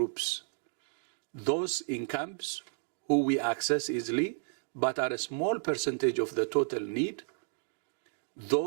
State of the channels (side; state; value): left; silent; digital silence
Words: Those in camps who we access easily, but are a small percentage of the total need.